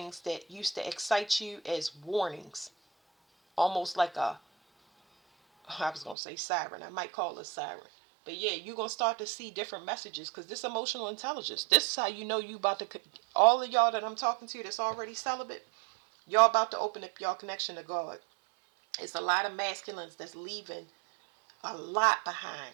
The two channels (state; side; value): drops out; left; at 6.2 s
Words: that used to excite you as warnings. Almost like I was going to say siren. I might call it a siren. But yeah, you're going to start to see different messages because this emotional intelligence, this is how you know you about to, all of y'all that I'm talking to that's already celibate, y'all about to open up y'all connection to God. It's a lot of masculines that's leaving a lot behind.